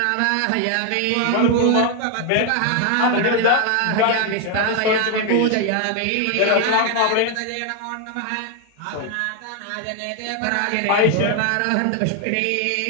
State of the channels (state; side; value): different; both; correlation 0.01